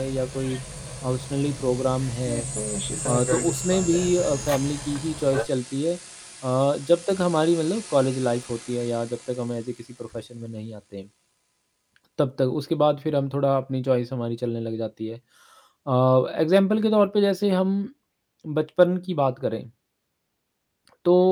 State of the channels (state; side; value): identical; both; correlation 1.00